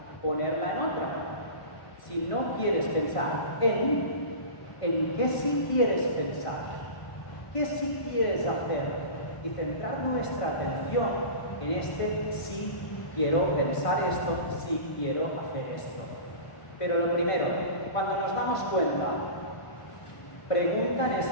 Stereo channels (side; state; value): right; late; 1.5 ms